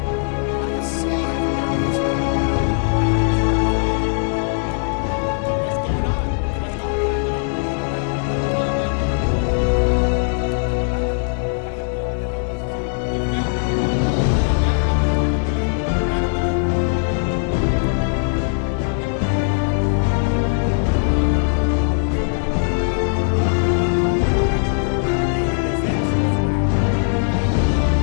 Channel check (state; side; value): silent; right; digital silence